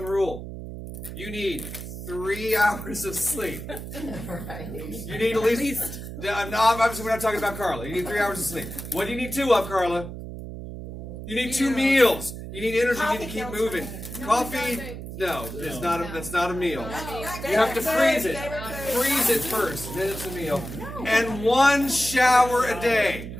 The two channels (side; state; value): right; noise; hum, 10 dB below the sound